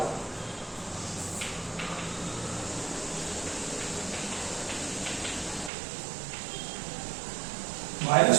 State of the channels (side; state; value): left; drops out; at 5.7 s